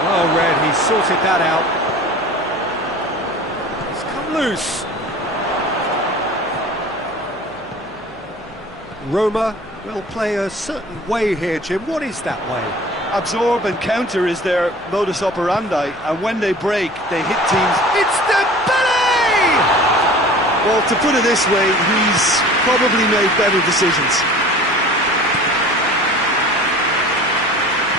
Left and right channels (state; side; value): noise; left; hum, 27 dB below the sound